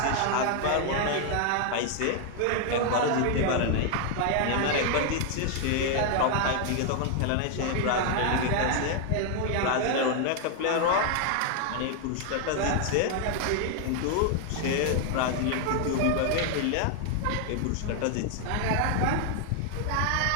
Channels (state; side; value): different; both; correlation 0.00